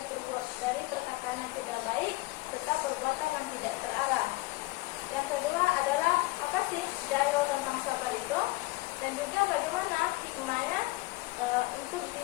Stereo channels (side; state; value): right; quieter; 21.7 dB